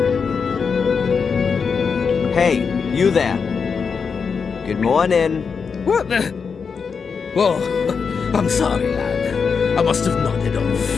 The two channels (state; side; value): quieter; right; 5.7 dB